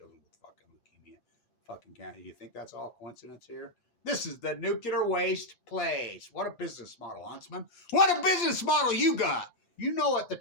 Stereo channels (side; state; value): right; late; 8.6 ms